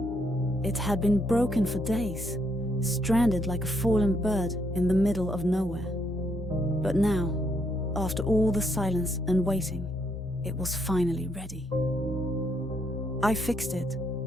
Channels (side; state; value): both; normal; correlation 0.74